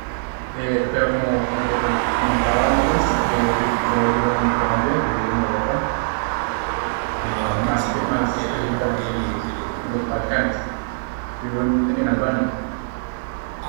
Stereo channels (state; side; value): silent; left; digital silence